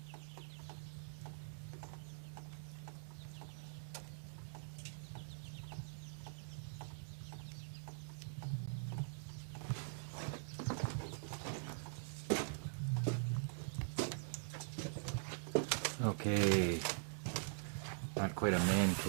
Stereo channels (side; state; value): left; silent; digital silence